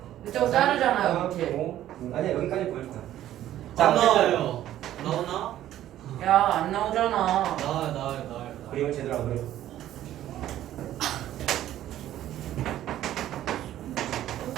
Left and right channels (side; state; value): left; quieter; 12.7 dB